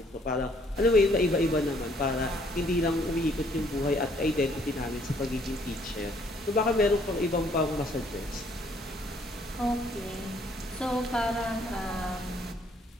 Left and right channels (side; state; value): both; normal; correlation 0.63